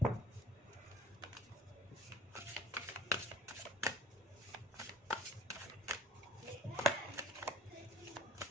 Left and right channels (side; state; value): both; normal; correlation 0.49